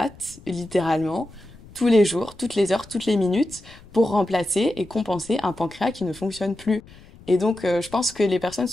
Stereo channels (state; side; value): noise; left; rumble, 22 dB below the sound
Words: littéralement tous les jours, toutes les heures, toutes les minutes pour remplacer et compenser un pancréas qui ne fonctionne plus. Et donc, je pense que les personnes